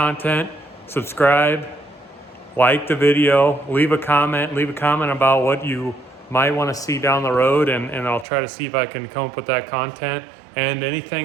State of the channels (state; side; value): drops out; left; at 8.2 s